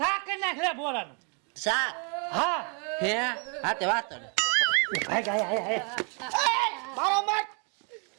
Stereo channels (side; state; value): left; quieter; 37.3 dB